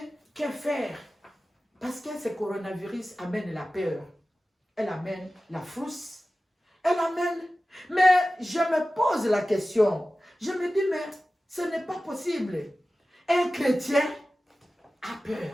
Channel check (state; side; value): normal; both; correlation 0.95